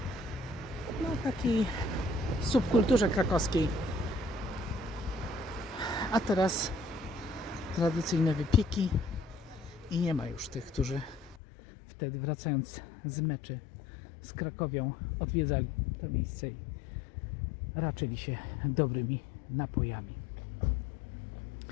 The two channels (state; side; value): drops out; right; at 11.4 s